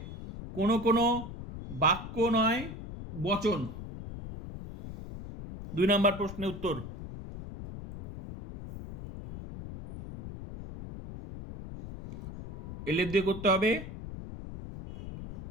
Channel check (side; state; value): left; noise; rumble, 11 dB below the sound